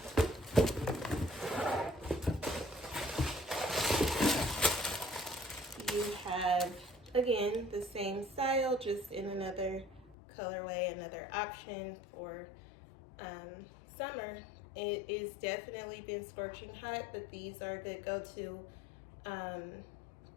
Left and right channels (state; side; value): drops out; right; at 10.2 s